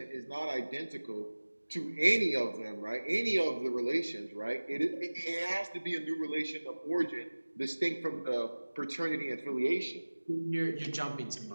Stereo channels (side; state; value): both; inverted; correlation -1.00